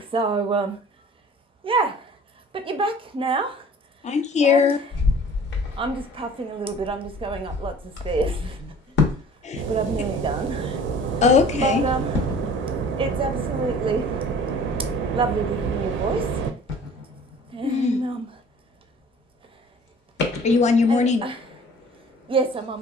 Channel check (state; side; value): normal; both; correlation 0.48